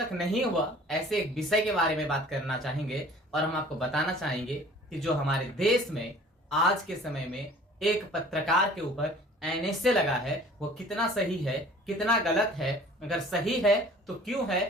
नहीं हुआ ऐसे एक विषय के बारे में बात करना चाहेंगे और हम आपको बताना चाहेंगे कि जो हमारे देश में आज के समय में एक पत्रकार के ऊपर एनएसए लगा है वो कितना सही है, कितना गलत है, अगर सही है तो क्यों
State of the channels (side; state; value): both; normal; correlation 0.49